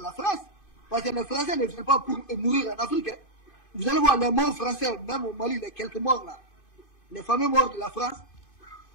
France. Parce que les Français ne viennent pas pour mourir en Afrique. Hein. Vous allez voir les morts français, même au Mali, les quelques morts là, les fameux morts de la France,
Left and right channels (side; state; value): right; late; 2.5 ms